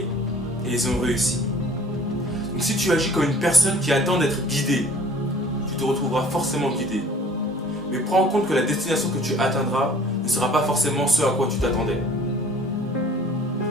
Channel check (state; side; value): normal; both; correlation 0.51